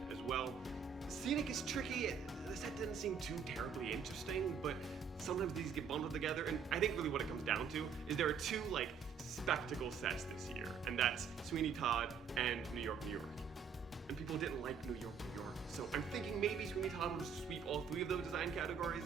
as well. Scenic is tricky. The set doesn't seem too terribly interesting, but sometimes these get bundled together, and I think really what it comes down to is there are 2 spectacle sets this year, and that's Sweeney Todd and New York, New York. And people didn't like New York, New York, so I'm thinking maybe Sweeney Todd will sweep all 3 of those design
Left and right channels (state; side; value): quieter; left; 6.4 dB